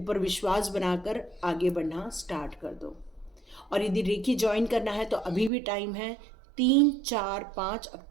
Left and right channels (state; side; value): drops out; left; at 5.5 s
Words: विश्वास बनाकर आगे बढ़ना स्टार्ट कर दो। और यदि रेकी ज्वाइन करना है तो अभी भी टाइम है। 3, 4, 5